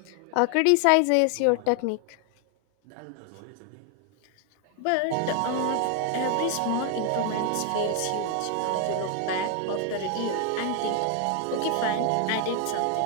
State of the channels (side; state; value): both; different; correlation 0.00